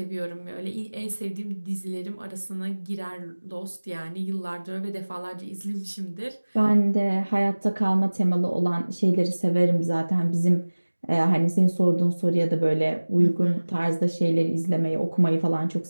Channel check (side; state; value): both; inverted; correlation -1.00